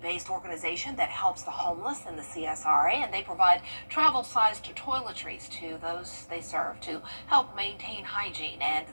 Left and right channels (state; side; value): inverted; both; correlation -1.00